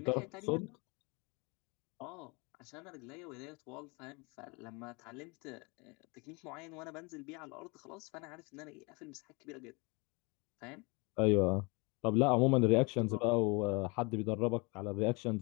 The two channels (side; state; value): right; quieter; 28.6 dB